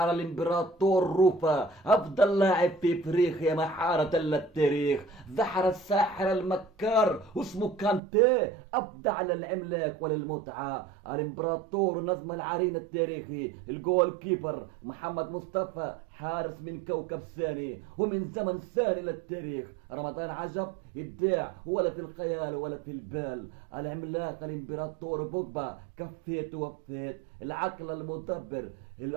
الإمبراطور روفا أفضل لاعب في إفريقيا محارة للتاريخ. زحر الساحر المكار اسمه كانتي أبدع للعملاق وللمتعة. الإمبراطور نجم العرين التاريخي الجول كيبر محمد مصطفى حارس من كوكب ثاني ومن زمن ثاني للتاريخ. رمضان عجب إبداع ولا في الخيال ولا في البال. العملاق الامبراطور بوجبا كفيت ووفيت. العقل المدبر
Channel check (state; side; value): drops out; left; at 8.0 s